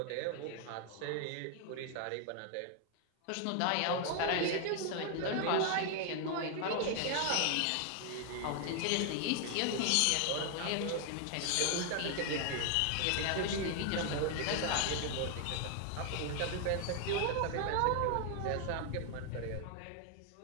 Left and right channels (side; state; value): both; different; correlation 0.00